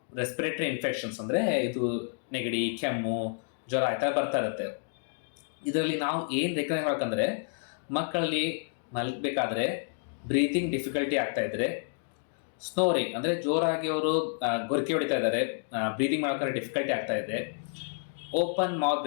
ರೆಸ್ಪಿರೇಟರಿ ಇನ್ಫೆಕ್ಷನ್ಸ್ ಅಂದರೆ ಇದು ನೆಗಡಿ, ಕೆಮ್ಮು, ಜ್ವರ ಆಯ್ತಾ ಬರ್ತಾ ಇರುತ್ತೆ. ಇದರಲ್ಲಿ ನಾವು ಏನು ರೆಕಗ್ನೈಸ್ ಮಾಡ್ಬೇಕಂದ್ರೆ, ಮಕ್ಕಳಲ್ಲಿ ಮಲಗಬೇಕಾದ್ರೆ ಬ್ರೀತಿಂಗ್ ಡಿಫಿಕಲ್ಟಿ ಆಗ್ತಾ ಇದ್ರೆ, ಸ್ನೋರಿಂಗ್ ಅಂದರೆ ಜೋರಾಗಿ ಅವರು ಗೊರಕೆ ಹೊಡಿತಾ ಇದ್ದಾರೆ, ಬ್ರೀತಿಂಗ್ ಮಾಡೋಕೆ ಡಿಫಿಕಲ್ಟಿ ಆಗ್ತಾ ಇದೆ, ಓಪನ್ ಮೌತ್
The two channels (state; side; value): silent; right; digital silence